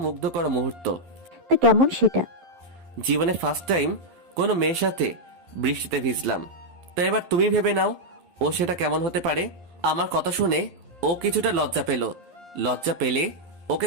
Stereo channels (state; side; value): late; left; 11 ms